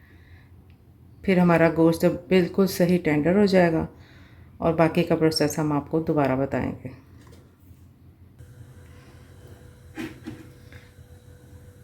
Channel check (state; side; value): identical; both; correlation 1.00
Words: फिर हमारा गोश्त बिल्कुल सही टेंडर हो जाएगा और बाकी का प्रोसेस हम आपको दोबारा बताएंगे।